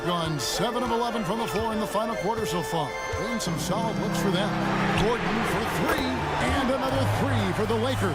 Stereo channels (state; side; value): identical; both; correlation 1.00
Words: gone 7 of 11 from the floor in the final quarter so far. Been some solid looks for them. Gordon for 3, and another 3 for the